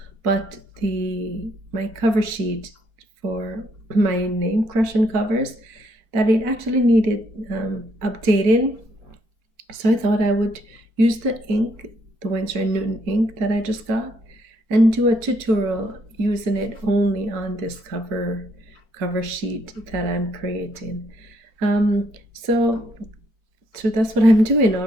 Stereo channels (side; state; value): left; late; 4.5 ms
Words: but my cover sheet for my name, CrushonCovers, that it actually needed updating. So I thought I would use the ink, the Winsor & Newton ink that I just got, and do a tutorial using it only on this cover sheet that I'm creating. So that's what I'm doing. All